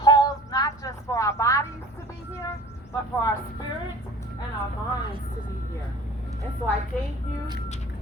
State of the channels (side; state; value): both; normal; correlation 0.44